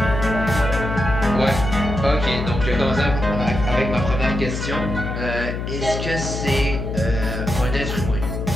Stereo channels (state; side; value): noise; left; hum, 4 dB below the sound